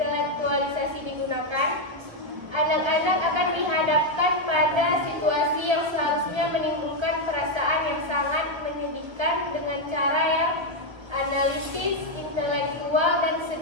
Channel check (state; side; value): late; left; 1.3 ms